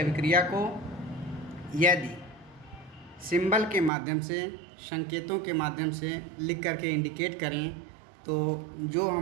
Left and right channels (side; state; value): left; drops out; at 3.9 s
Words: को यदि सिंबल के माध्यम से, संकेतों के माध्यम से लिख करके इंडिकेट करें तो जो